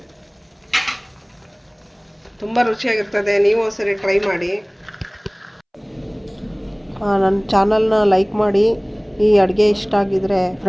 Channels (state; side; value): identical; both; correlation 1.00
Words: ತುಂಬ ರುಚಿಯಾಗಿರ್ತದೆ. ನೀವು ಒಂದ್ಸರಿ ಟ್ರೈ ಮಾಡಿ. ನನ್ನ ಚಾನಲ್ನ ಲೈಕ್ ಮಾಡಿ. ಈ ಅಡುಗೆ ಇಷ್ಟ ಆಗಿದರೆ